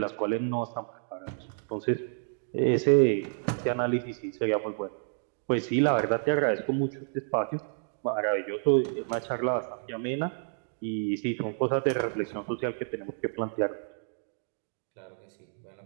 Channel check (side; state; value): left; silent; digital silence